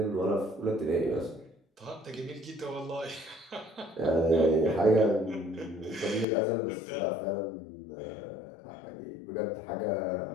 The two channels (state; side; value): drops out; right; at 6.2 s